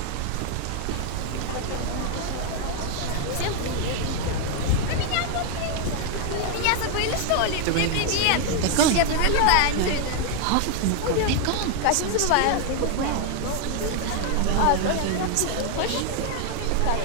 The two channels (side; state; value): both; different; correlation 0.00